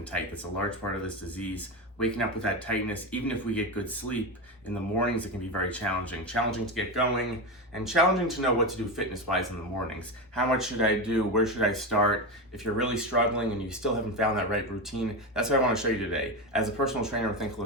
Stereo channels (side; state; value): both; normal; correlation 0.17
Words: tight. That's a large part of this disease. Waking up with that tightness, even if we get good sleep, in the mornings it can be very challenging. Challenging to get going, and challenging to know what to do fitness-wise in the mornings. How much should I do? Where should I start? If you're really struggling and you still haven't found that right routine, that's what I want to show you today. As a personal trainer with